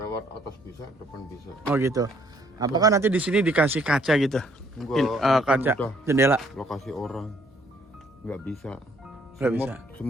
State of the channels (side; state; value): both; normal; correlation 0.65